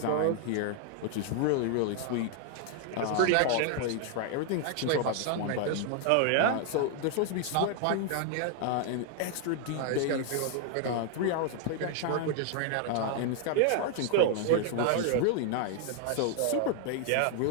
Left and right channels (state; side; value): different; both; correlation 0.00